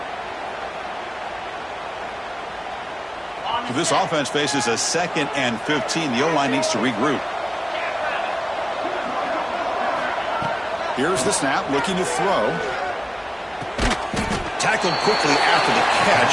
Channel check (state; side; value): identical; both; correlation 1.00